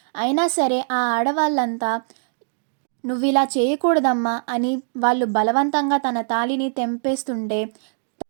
అయినా సరే ఆ ఆడవాళ్ళంతా నువ్విలా చేయకూడదమ్మా అని వాళ్ళు బలవంతంగా తన తాళిని తెంపేస్తుంటే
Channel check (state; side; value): silent; left; digital silence